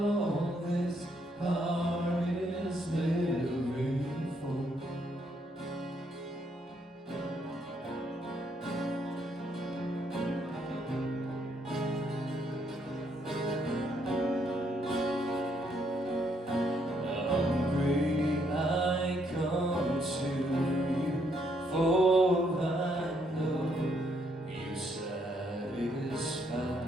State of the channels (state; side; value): normal; both; correlation 0.72